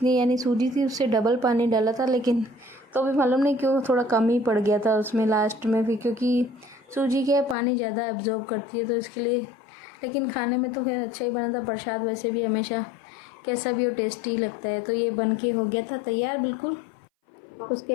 यानी सूजी थी उससे डबल पानी डाला था, लेकिन तो भी मालूम नहीं क्यों थोड़ा कम ही पड़ गया था उसमें लास्ट में भी, क्योंकि सूजी क्या है पानी ज़्यादा एब्जॉर्ब करती है तो इसके लिए। लेकिन खाने में तो खैर अच्छा ही बना था प्रसाद, वैसे भी हमेशा कैसा भी हो टेस्टी लगता है। तो ये बन के हो गया था तैयार बिल्कुल।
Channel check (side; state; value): right; drops out; at 7.6 s